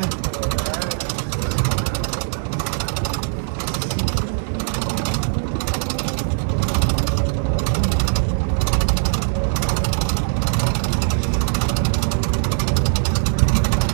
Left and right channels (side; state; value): left; silent; digital silence